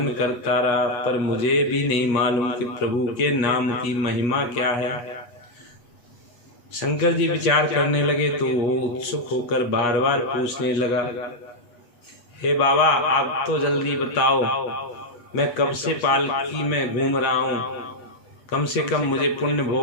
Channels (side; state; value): right; late; 8.4 ms